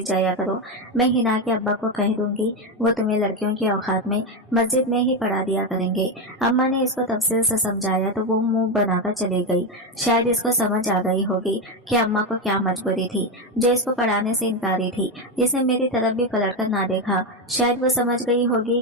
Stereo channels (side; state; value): both; normal; correlation 0.11